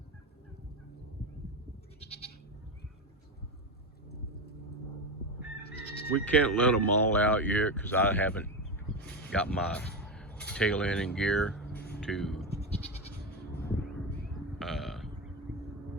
We can't let them all out yet because I haven't got my tail end in gear to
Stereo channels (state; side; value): normal; both; correlation 0.16